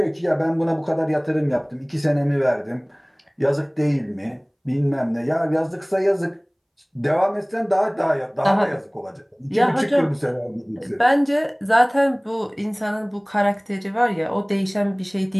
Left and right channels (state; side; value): identical; both; correlation 1.00